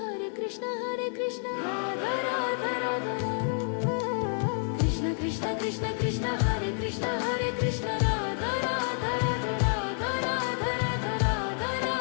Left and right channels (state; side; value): silent; right; 58 dB below the other